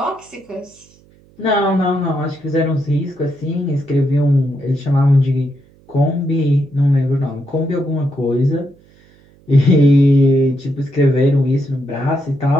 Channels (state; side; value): noise; right; hum, 30 dB below the sound